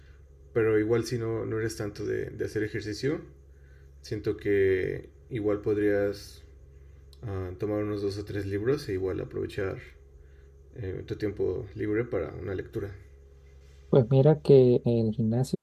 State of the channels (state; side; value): identical; both; correlation 1.00